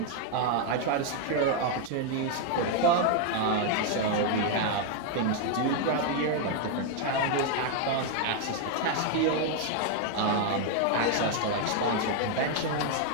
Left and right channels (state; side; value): different; both; correlation 0.00